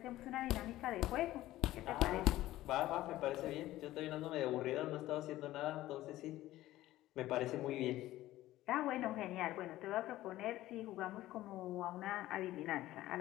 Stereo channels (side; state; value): right; quieter; 15.5 dB